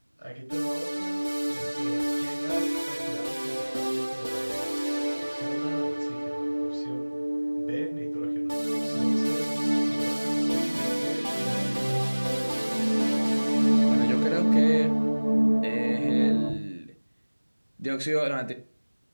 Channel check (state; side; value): inverted; both; correlation -1.00